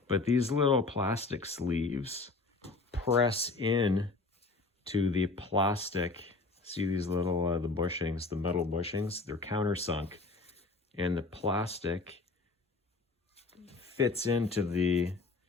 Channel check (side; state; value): right; quieter; 3.7 dB